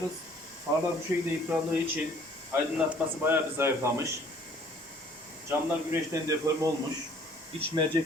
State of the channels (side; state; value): both; normal; correlation 0.56